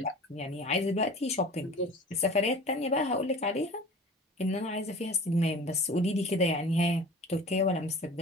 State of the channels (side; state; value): both; normal; correlation 0.41